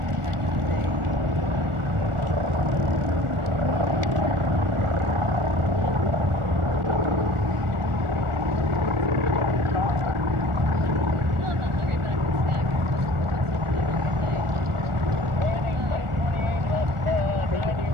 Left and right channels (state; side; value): late; left; 1.4 ms